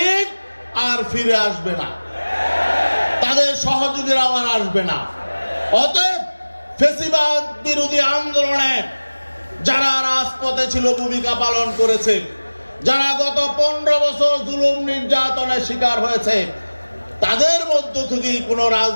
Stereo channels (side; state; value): both; inverted; correlation -1.00